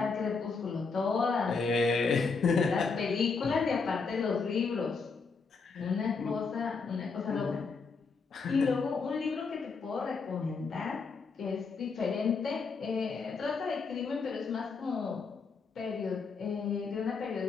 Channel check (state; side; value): quieter; right; 4.8 dB